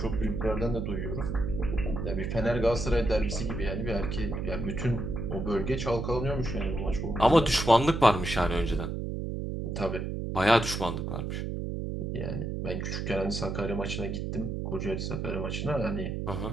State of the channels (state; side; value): noise; right; hum, 3 dB below the sound